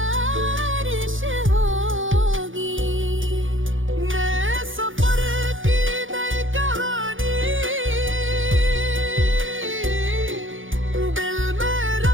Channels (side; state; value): left; late; 0.57 ms